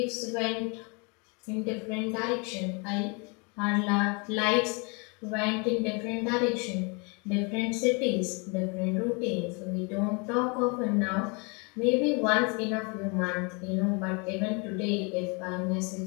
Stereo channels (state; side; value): quieter; right; 32.2 dB